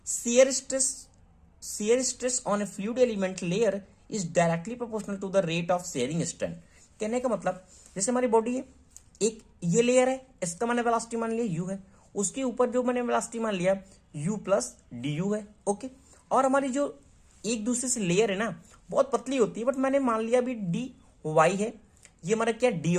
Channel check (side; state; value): both; identical; correlation 1.00